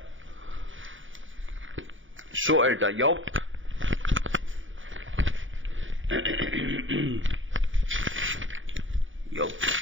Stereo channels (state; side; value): late; left; 0.57 ms